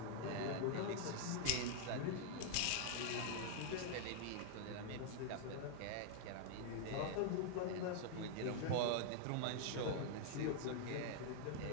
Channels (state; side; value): different; both; correlation -0.01